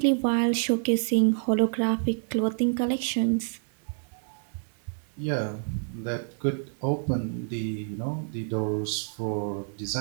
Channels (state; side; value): silent; left; 59 dB below the other